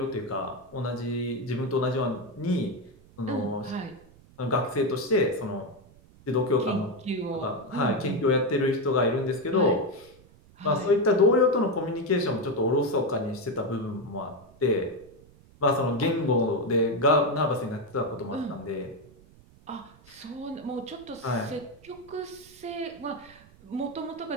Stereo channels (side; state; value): right; noise; rumble, 25 dB below the sound